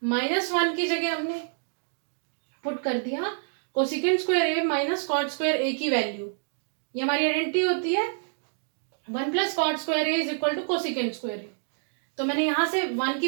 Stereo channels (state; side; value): silent; left; digital silence